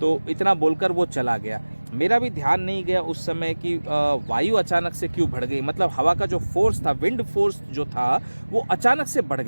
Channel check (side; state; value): both; inverted; correlation -1.00